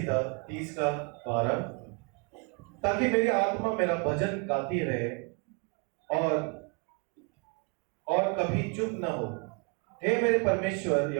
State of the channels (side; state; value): left; quieter; 33.4 dB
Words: 30 का 12, ताकि मेरी आत्मा मेरा भजन गाती रहे और कभी चुप न हो। हे मेरे परमेश्वर